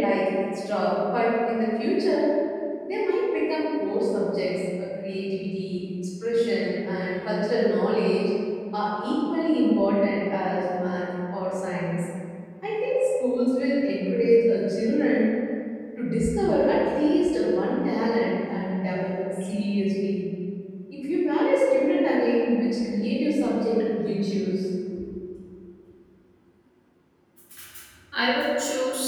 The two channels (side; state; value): both; identical; correlation 1.00